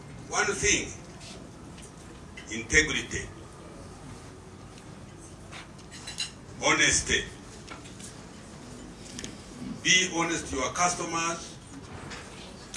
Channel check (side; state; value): both; identical; correlation 1.00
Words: One thing, integrity, honesty. Be honest to your customers.